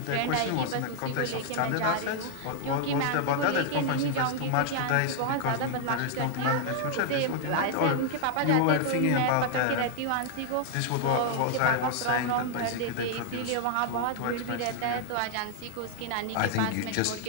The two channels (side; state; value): both; different; correlation 0.00